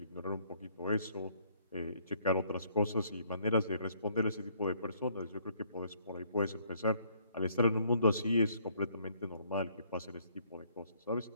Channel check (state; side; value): inverted; both; correlation -0.65